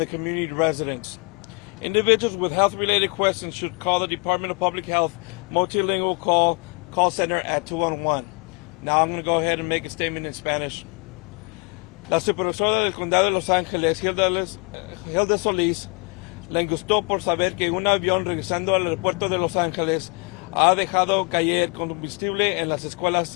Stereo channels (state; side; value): quieter; right; 32.5 dB